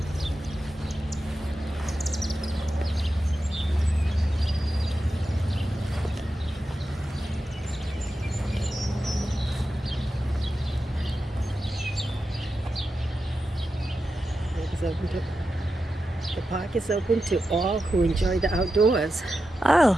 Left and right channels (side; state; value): both; normal; correlation 0.90